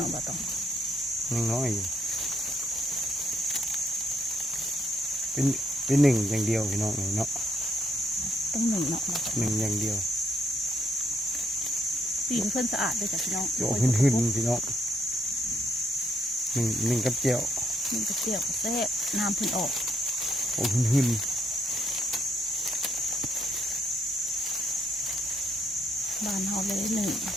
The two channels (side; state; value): both; normal; correlation 0.73